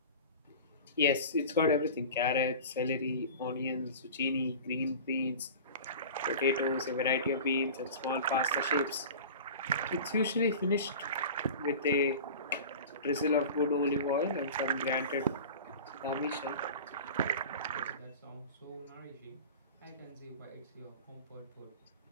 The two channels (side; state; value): both; inverted; correlation -0.35